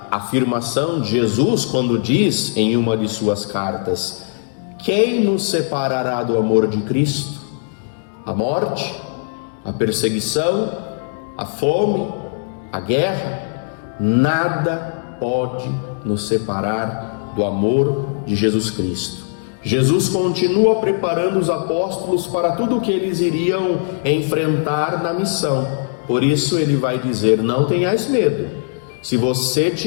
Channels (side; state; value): right; silent; digital silence